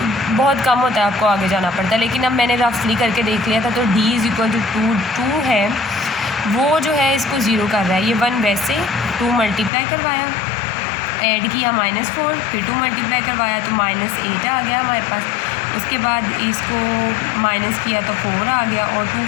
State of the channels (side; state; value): right; drops out; at 9.7 s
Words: बहुत कम होता है, आपको आगे जाना पड़ता है। लेकिन अब मैंने रफली करके देख लिया था तो d इज़ इक्वल टू 2 है, वो जो है इसको 0 कर रहा है। ये 1 वैसे 2 मल्टीप्लाई करवाया, ऐड किया -4, फिर 2 मल्टीप्लाई करवाया तो -8 आ गया हमारे पास। उसके बाद इसको माइनस किया तो 4 आ गया, और 2